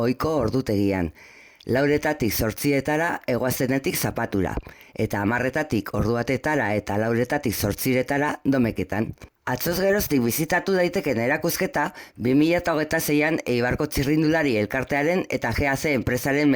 ordutegian. 4:00 zortzietara egoazenetik zapatura, eta 10:00 ordu batetara eta 4:00 zortziretara domeketan. Atzoz geroztik bizitatu daiteken erakusketa 2026an Eibarko txirrindulari elkartearen eta GAC enpresaren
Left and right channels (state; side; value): identical; both; correlation 1.00